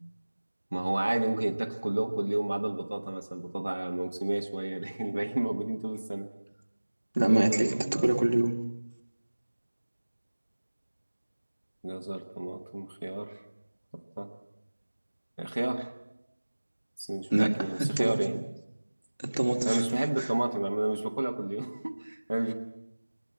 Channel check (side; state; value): both; inverted; correlation -1.00